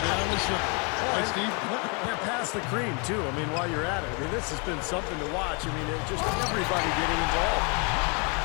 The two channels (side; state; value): right; quieter; 34.0 dB